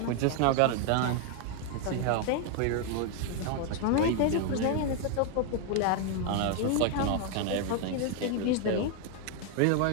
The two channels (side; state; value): both; different; correlation 0.01